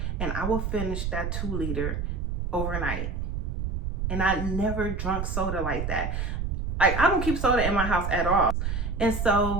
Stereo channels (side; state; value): right; noise; rumble, 2 dB below the sound